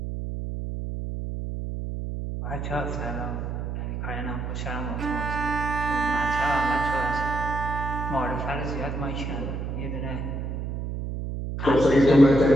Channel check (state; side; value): noise; right; hum, 4 dB below the sound